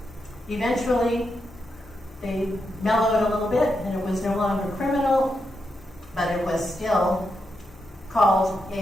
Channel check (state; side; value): normal; both; correlation 0.85